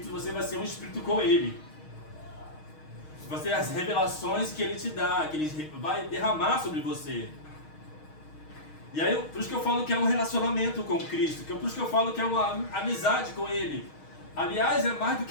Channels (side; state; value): right; late; 6.4 ms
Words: você vai ser um espírito com Ele. Você as revelações que Ele te dá, que Ele vai derramar sobre você. E aí, por isso que eu falo que é um relacionamento com Cristo, por isso que eu falo que é uma amizade com Ele. Aliás, é mais do